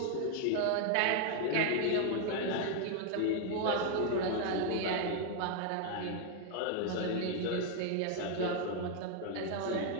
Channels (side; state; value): both; different; correlation 0.00